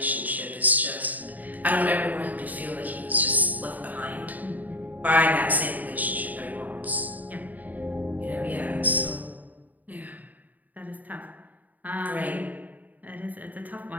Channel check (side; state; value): left; late; 0.080 ms